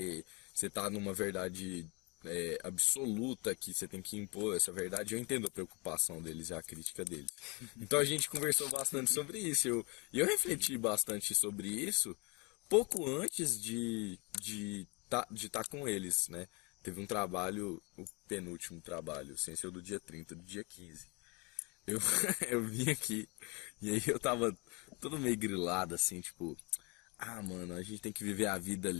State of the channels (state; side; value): quieter; right; 28.8 dB